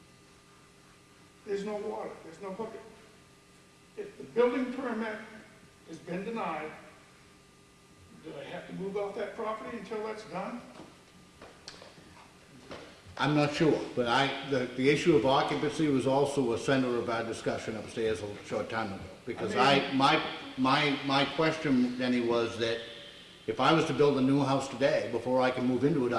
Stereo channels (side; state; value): both; identical; correlation 1.00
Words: There's no water, there's no bucket. If the building permit has been denied, do I have to move off that property until that's done? I'm not sure, but the issue of occupancy was also a center of our discussion upstairs a short time ago. Because my question, Denny, was that if I was to build a new house today, before I can move into it,